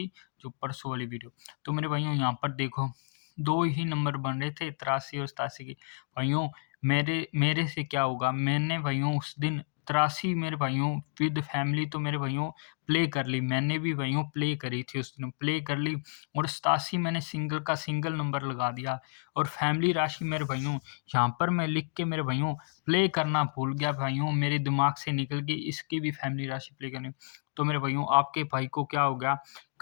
जो परसों वाली वीडियो। तो मेरे भाइयों, यहाँ पर देखो, दो ही नंबर बन रहे थे, 83 और 87 की। भाइयों, मेरे मेरे से क्या होगा, मैंने भाइयों उस दिन 83 मेरे भाइयों विद फैमिली, तो मेरे भाइयों प्ले कर ली। मैंने भी भाइयों प्ले करी थी उस दिन, प्ले कर ली। और 87 मैंने सिंगल का सिंगल नंबर लगा दिया। और फैमिली राशि मेरे भाइयों, यहाँ पर मैं लिख के मेरे भाइयों प्ले करना भूल गया भाइयों, मेरे दिमाग से निकल गई, इसकी भी फैमिली राशि प्ले करनी। तो मेरे भाइयों, आपके भाई को क्या हो गया,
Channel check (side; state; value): right; silent; digital silence